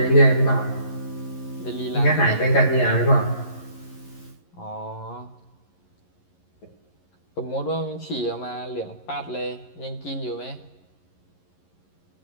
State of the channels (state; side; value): late; right; 11 ms